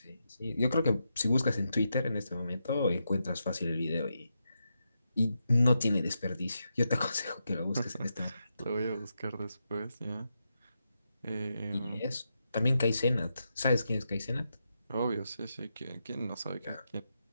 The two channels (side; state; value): both; inverted; correlation -0.85